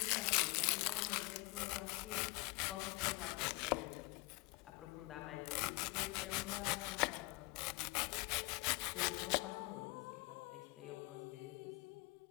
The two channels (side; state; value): right; quieter; 25.1 dB